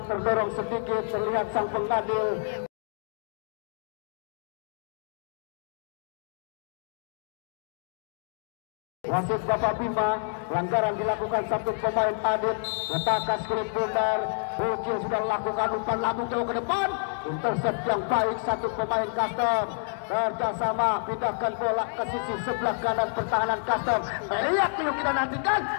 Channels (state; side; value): silent; right; digital silence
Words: terdorong sedikit, terlihat sang pengadil. Wasit Bapak Bima, pelanggaran dilakukan satu pemain Adit, letakkan skrip bundar, Bocil sudah lakukan umpan lambung jauh ke depan, intercept yang baik satu pemain Custom, kerjasama pindahkan bola ke sisi sebelah kanan pertahanan Custom. Lihat dulu kita nantikan,